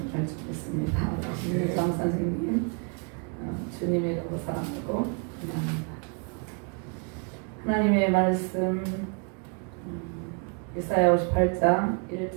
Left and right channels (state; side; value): quieter; left; 37.8 dB